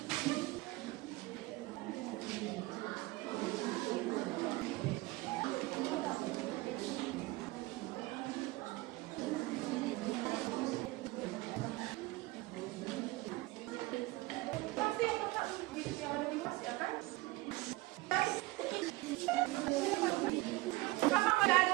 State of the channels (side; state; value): left; quieter; 20.5 dB